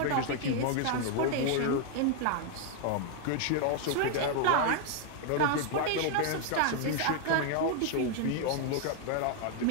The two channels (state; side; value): different; both; correlation 0.00